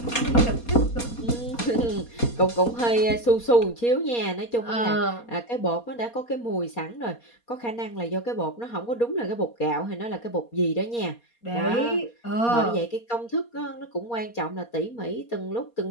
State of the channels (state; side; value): late; right; 4.2 ms